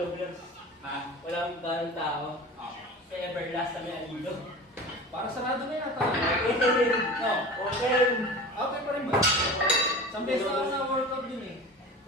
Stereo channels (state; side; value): normal; both; correlation 0.35